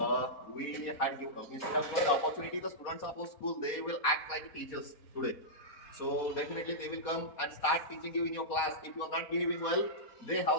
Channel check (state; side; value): late; right; 4.1 ms